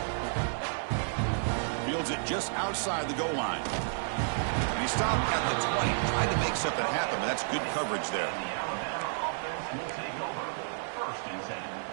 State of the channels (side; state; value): left; silent; digital silence